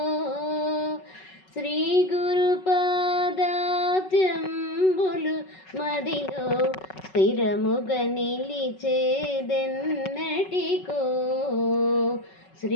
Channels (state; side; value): late; right; 5.3 ms